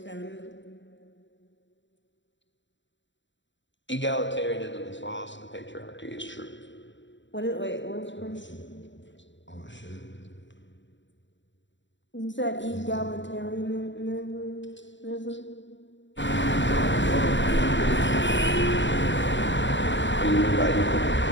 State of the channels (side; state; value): right; late; 0.54 ms